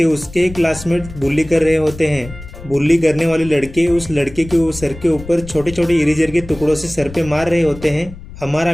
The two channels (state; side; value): noise; left; rumble, 15 dB below the sound